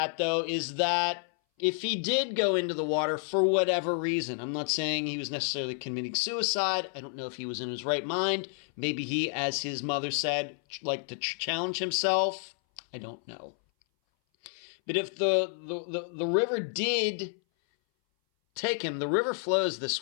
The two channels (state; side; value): silent; right; 58 dB below the other